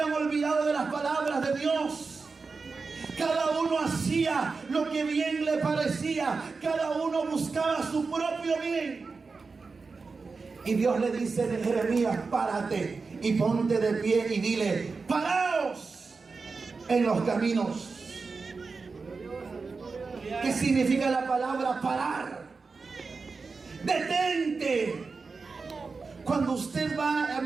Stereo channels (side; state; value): left; quieter; 4.4 dB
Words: olvidado de las palabras de Dios. Cada uno hacía lo que bien le parecía. Cada uno buscaba su propio bien. Y Dios le dice a Jeremías: párate y ponte de pie y dile: paraos en los caminos. ¿Qué significa la palabra parar? Detente. Cuando usted va